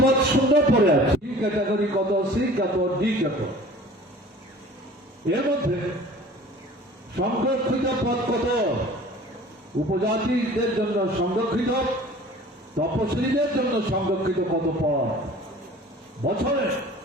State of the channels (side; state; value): both; normal; correlation 0.46